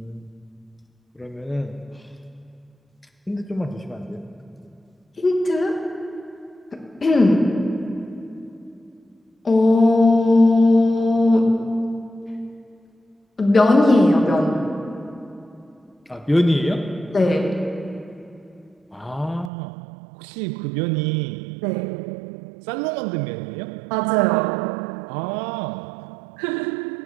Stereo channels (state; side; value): drops out; left; at 19.5 s